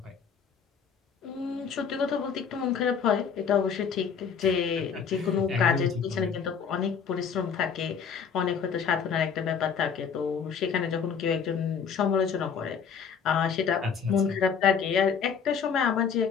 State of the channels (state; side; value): quieter; right; 6.7 dB